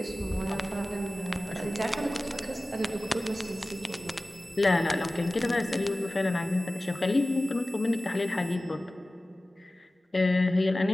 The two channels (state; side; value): normal; both; correlation 0.97